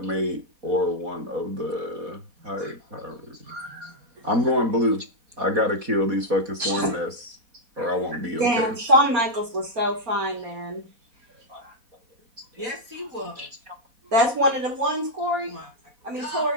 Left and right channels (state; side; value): late; left; 4.3 ms